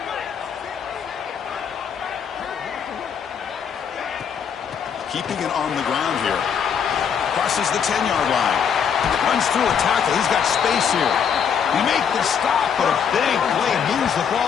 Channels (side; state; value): right; quieter; 7.4 dB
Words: Keeping it on the ground here. Crosses the 10-yard line. Runs through a tackle. He's got space here. He makes the stop, but a big play moves the